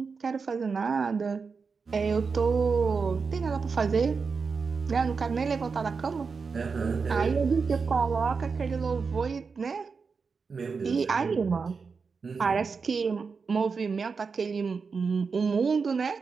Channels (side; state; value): left; quieter; 5.1 dB